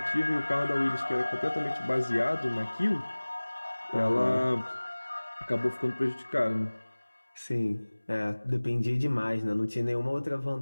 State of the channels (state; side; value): inverted; both; correlation -1.00